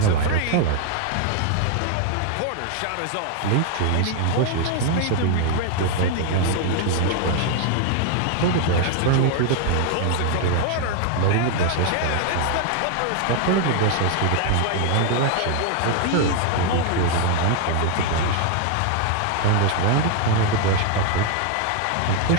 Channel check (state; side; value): different; both; correlation 0.00